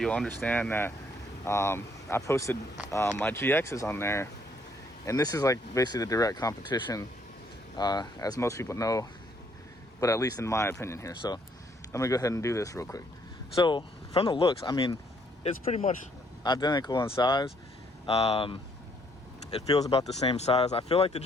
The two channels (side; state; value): both; normal; correlation 0.67